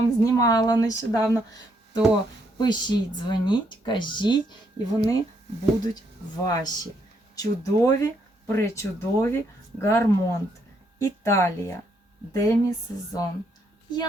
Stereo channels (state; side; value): normal; both; correlation 0.74